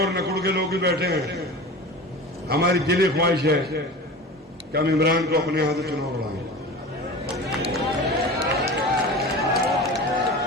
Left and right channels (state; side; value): normal; both; correlation 0.34